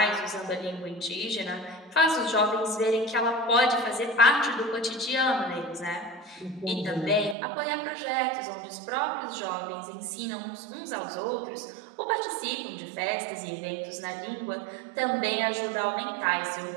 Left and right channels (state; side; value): drops out; left; at 7.4 s